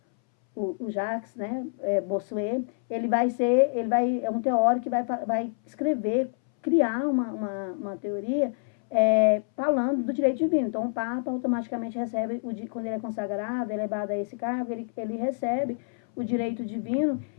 o Jacques, né, Bossuet, é um teórico que vai escrever, criar uma teoria falando do direito divino. Então, o Papa automaticamente recebe, quando ele é consagrado, elevado a esse cargo, ele recebe o direito divino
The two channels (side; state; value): right; silent; 60 dB below the other